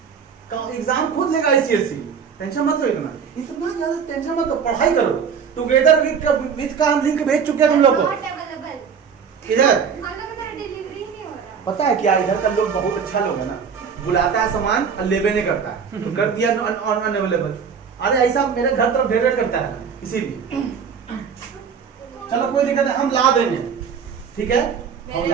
एग्जाम खुद लेगा ICSE, टेंशन मत लो इतना ज्यादा टेंशन मत लो, पढ़ाई करो। टुगेदर विद का हम लिंक भेज चुके हैं तुम लोग को। Not available. इधर हम लोग का डिलीवरी ही नहीं हो रहा। पता है क्या, इधर का लोग बहुत अच्छा लोग है ना, बुलाता है सामान और लेबे नहीं करता है, तो कर दिया अनअवेलेबल। अरे ऐसा मेरे घर तरफ ढेर करता है इसीलिए। चलो कोई दिक्कत नहीं, हम ला देंगे। ठीक है, हम मेरे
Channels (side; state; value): left; quieter; 6.6 dB